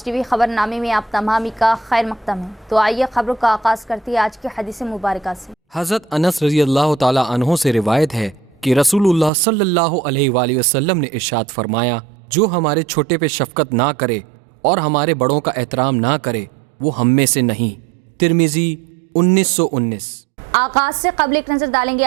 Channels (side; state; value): left; drops out; at 9.3 s